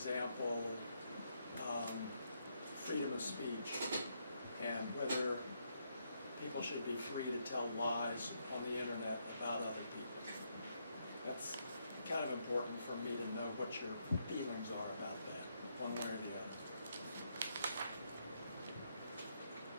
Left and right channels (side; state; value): both; inverted; correlation -0.77